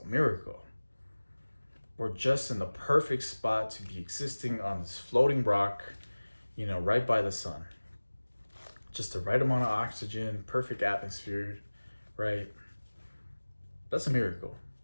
a miracle. We're just in the perfect spot to be existing on this floating rock, right by the sun. Just the right amount of oxygen, perfect atmosphere, right? That's a miracle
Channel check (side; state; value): both; inverted; correlation -1.00